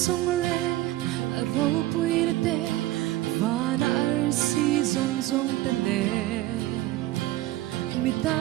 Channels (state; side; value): quieter; left; 16.0 dB